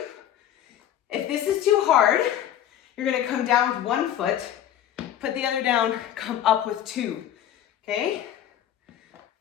If this is too hard, you're gonna come down with one foot, put the other down, come up with two, okay?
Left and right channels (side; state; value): right; quieter; 11.0 dB